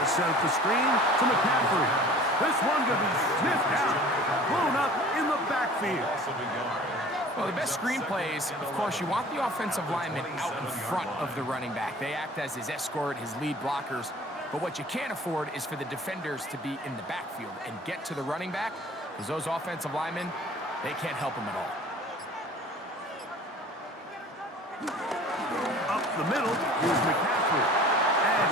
set up the screen to McCaffrey. This one going to be sniffed out, blown up in the backfield. Well, the best screen plays, of course, you want the offensive lineman out in front of the running back. They act as his escort, his lead blockers. But what you can't afford is for the defenders to be in the backfield and get to the running back, because those offensive linemen, they can't help him at all. Up the middle, here's McCaffrey. And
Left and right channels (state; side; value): normal; both; correlation 0.46